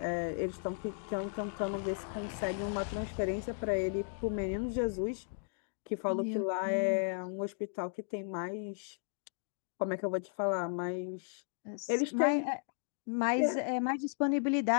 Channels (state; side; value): silent; right; digital silence